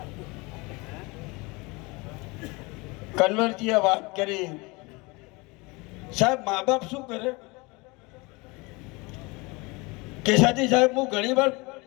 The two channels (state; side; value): quieter; right; 25.9 dB